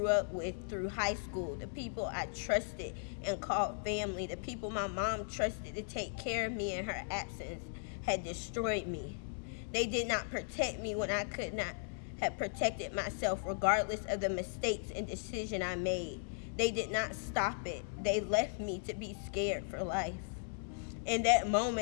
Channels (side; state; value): right; silent; digital silence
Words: up with through high school, the people I trusted and called family, the people my mom trusted to take care of me in her absence, had destroyed me. They did not protect me when I could not have protected myself, regardless of the mistakes and decision I made. They did not stop it. They left me to be scared for life. In that